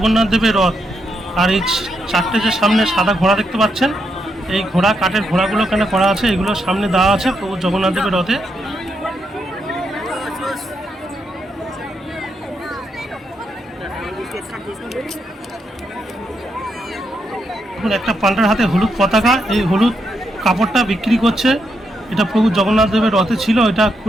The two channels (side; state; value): both; normal; correlation 0.81